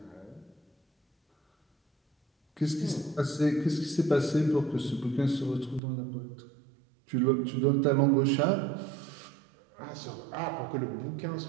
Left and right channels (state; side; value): drops out; left; at 5.8 s